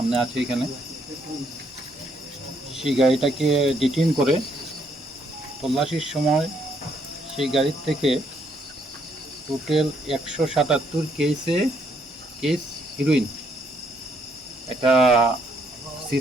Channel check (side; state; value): both; normal; correlation 0.71